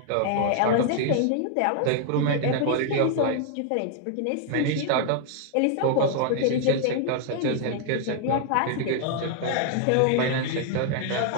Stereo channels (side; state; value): both; different; correlation 0.00